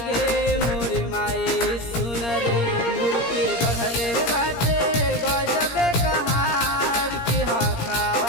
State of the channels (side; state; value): right; late; 17 ms